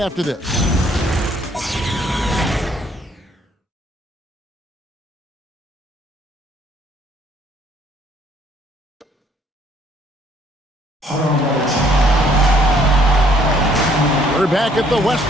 this. We're back at the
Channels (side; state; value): both; normal; correlation 0.63